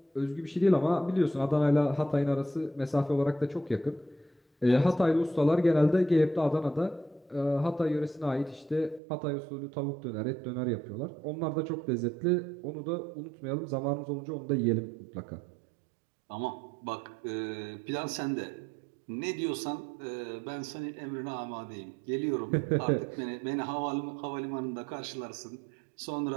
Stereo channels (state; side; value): drops out; left; at 9.0 s